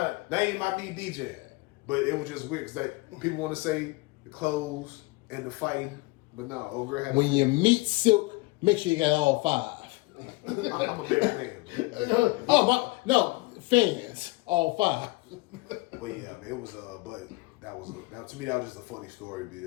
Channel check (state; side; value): quieter; right; 23.0 dB